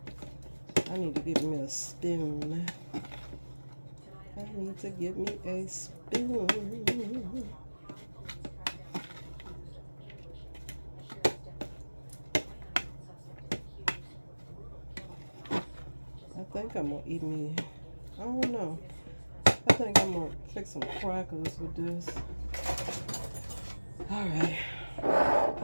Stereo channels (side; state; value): both; inverted; correlation -1.00